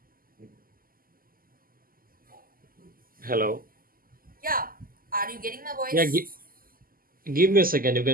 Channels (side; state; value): left; late; 0.42 ms